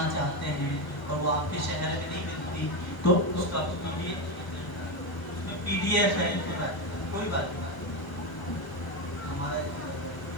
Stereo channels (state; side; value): late; right; 1.1 ms